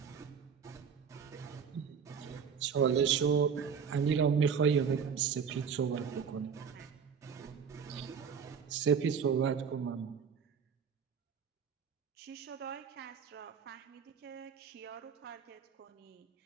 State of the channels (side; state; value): left; quieter; 6.8 dB